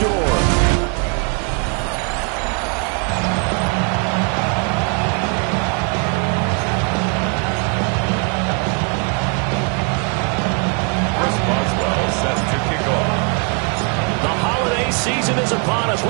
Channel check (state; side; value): quieter; left; 38.5 dB